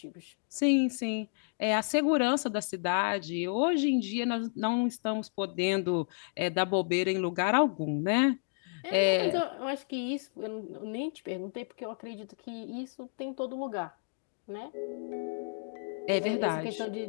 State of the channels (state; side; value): silent; right; digital silence